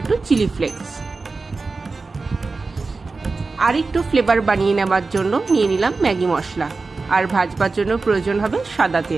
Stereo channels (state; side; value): quieter; left; 4.0 dB